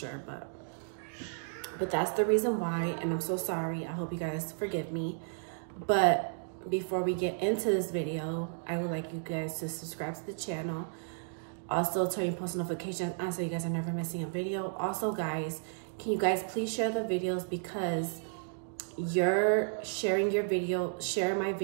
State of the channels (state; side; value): silent; left; digital silence